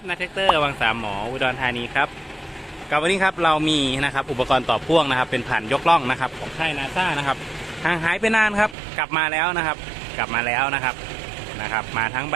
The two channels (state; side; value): drops out; left; at 8.8 s